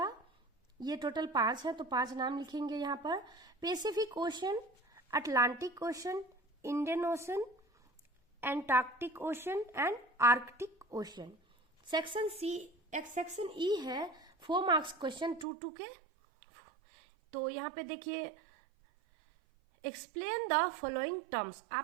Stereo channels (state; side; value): drops out; left; at 15.5 s